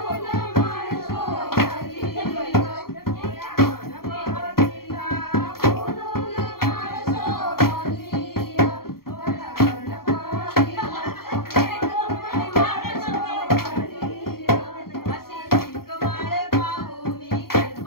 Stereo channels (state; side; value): late; right; 0.93 ms